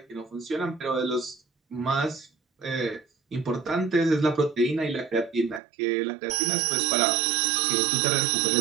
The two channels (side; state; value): left; drops out; at 5.6 s